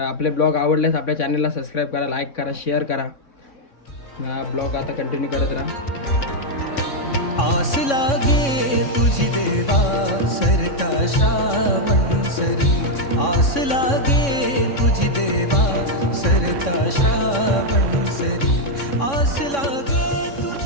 आपले ब्लॉग आवडल्यास आपल्या चॅनलला सबस्क्राईब करा, लाईक करा, शेअर करा. ब्लॉग आता कंटिन्यू करत राहा. आस लागे तुझी देवा सरता श्रावण सरी, आस लागे तुझी देवा सरता श्रावण सरी, आस लागे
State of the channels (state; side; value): late; right; 3.6 ms